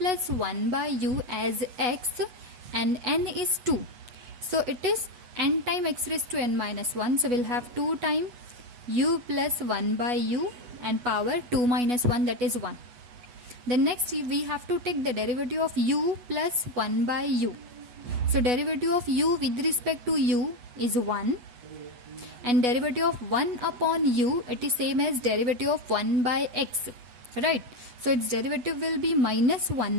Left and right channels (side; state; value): left; late; 8.2 ms